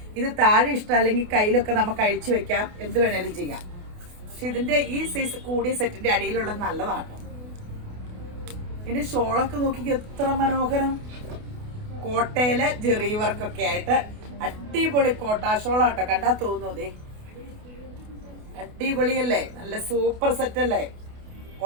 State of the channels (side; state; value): left; late; 28 ms